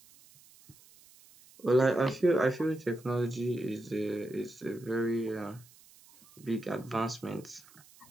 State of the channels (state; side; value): noise; right; hiss, 25 dB below the sound